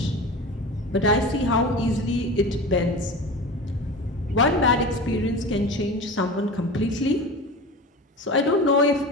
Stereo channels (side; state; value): both; normal; correlation 0.32